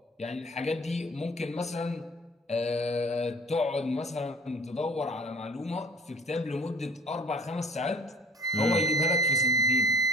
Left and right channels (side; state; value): both; normal; correlation 0.48